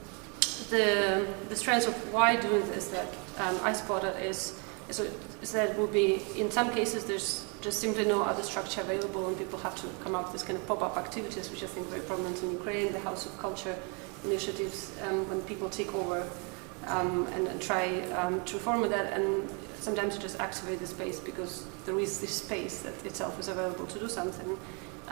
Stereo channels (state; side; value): quieter; left; 34.5 dB